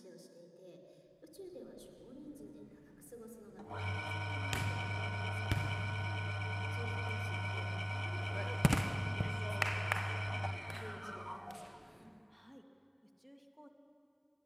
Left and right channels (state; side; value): identical; both; correlation 1.00